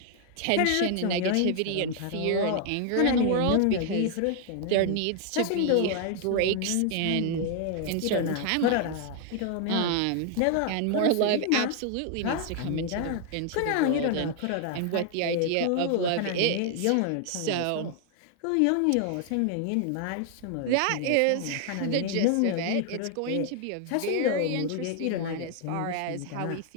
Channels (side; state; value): both; different; correlation 0.00